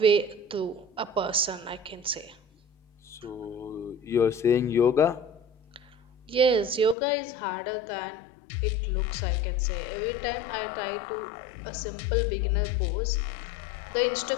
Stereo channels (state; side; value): drops out; right; at 7.0 s